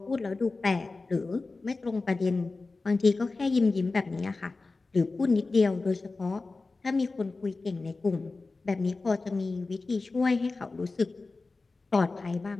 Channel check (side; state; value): right; quieter; 3.7 dB